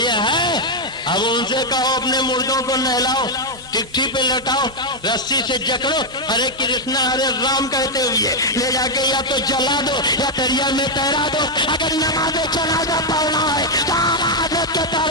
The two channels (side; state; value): both; normal; correlation 0.01